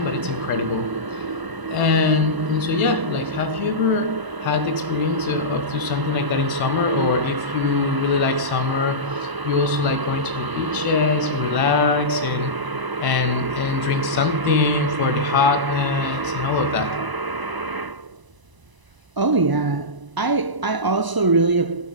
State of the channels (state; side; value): late; left; 1.0 ms